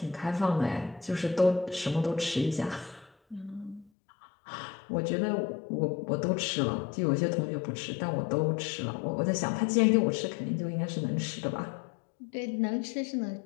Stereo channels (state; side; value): drops out; right; at 3.9 s